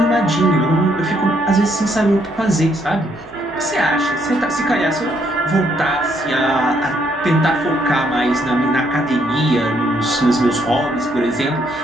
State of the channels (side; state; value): both; normal; correlation 0.71